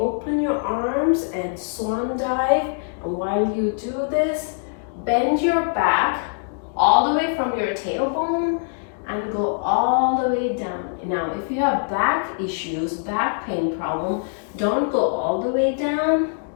your arms and swan dive. And while you do this, bend your back all the way from your tailbone and go all the way down. Now, if you have back issues, back pain problem, don't go all the way down.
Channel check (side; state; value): right; silent; digital silence